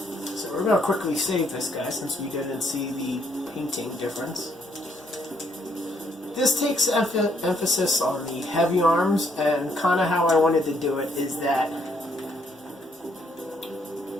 So we're going to quickly save this guy since we didn't see the painting difference. This takes emphasis on the heavy arms, and kind of how I wanted to do it is that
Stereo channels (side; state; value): both; normal; correlation 0.71